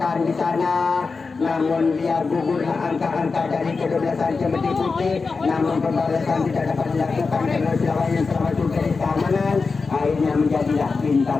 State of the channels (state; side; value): quieter; right; 4.5 dB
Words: di sana. Namun dia gugurlah angka-angka dari kedua-belasan Cemeti Putih. Namun pembalasan tidak dapat dilakukan karena lawan yang telah masuk garis keamanan. Akhirnya menjadilah